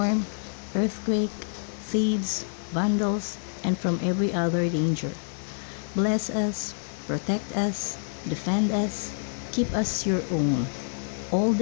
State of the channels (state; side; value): silent; right; 58 dB below the other